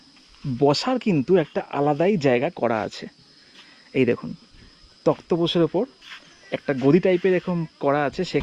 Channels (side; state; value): both; identical; correlation 1.00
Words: বসার কিন্তু একটা আলাদাই জায়গা করা আছে। এই দেখুন তক্তপোষের ওপর একটা গদি টাইপের এরকম করা আছে,